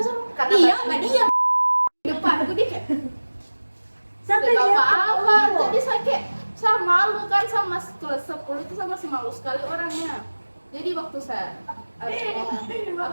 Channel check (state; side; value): inverted; both; correlation -1.00